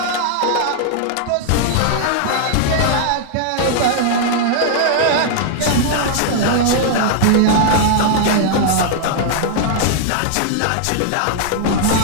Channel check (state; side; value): different; both; correlation -0.01